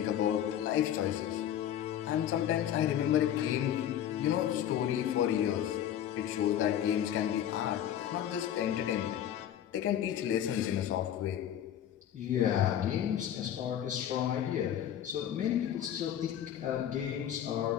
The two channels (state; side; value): quieter; right; 10.5 dB